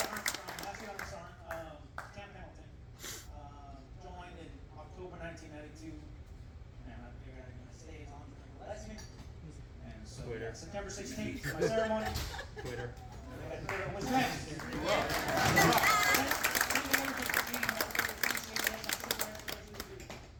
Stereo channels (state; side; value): identical; both; correlation 1.00